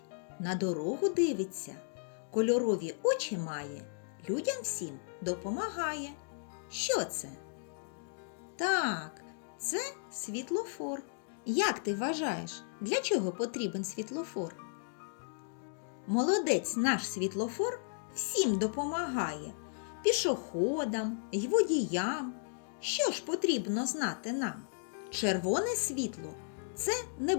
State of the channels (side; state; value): right; silent; digital silence